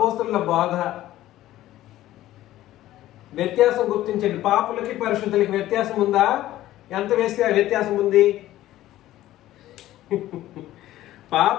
బోధ. వ్యత్యాసం గుర్తించండి. పాపులకి పరిశుద్ధులకి వ్యత్యాసం ఉందా? ఎంత వేస్తే వ్యత్యాసం ఉంది?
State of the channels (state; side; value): quieter; right; 14.6 dB